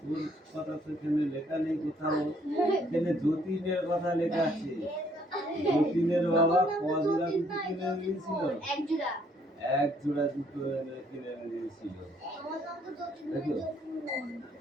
কথা তো এখানে লেখা নেই কোথাও। এখানে যতীনের কথা লেখা আছে। যতীনের বাবা কজোড়া জুতো কিনে দিয়েছিল? 1 জোড়া। 1 জোড়া জুতো কিনে দিয়েছিল। দেখো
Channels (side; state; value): both; normal; correlation 0.66